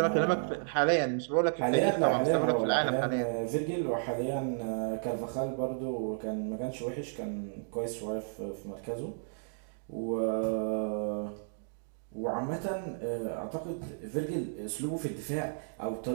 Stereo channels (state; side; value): silent; left; digital silence